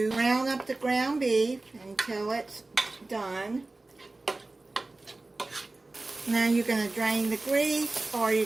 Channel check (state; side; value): quieter; left; 3.1 dB